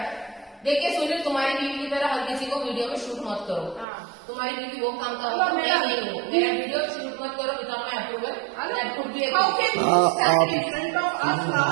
देखिए सुनील, तुम्हारी बीवी की तरह हर किसी को वीडियो में शूट मत करो। तुम्हारी बीवी वो काम का नहीं हो, मेरा वीडियो शूट मत करो without my approval. That could be How can you stand in front of us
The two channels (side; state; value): left; drops out; at 3.9 s